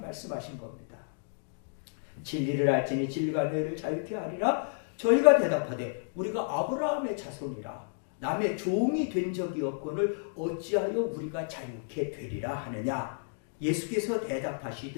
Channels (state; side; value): silent; right; digital silence